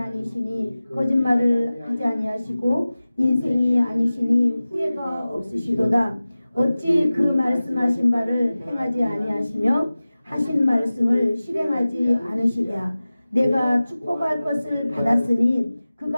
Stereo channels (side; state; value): both; inverted; correlation -0.97